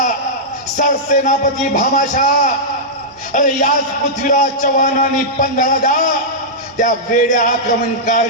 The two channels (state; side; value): normal; both; correlation -0.11